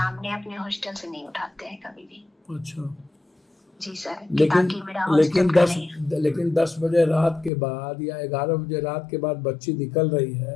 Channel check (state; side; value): drops out; right; at 7.5 s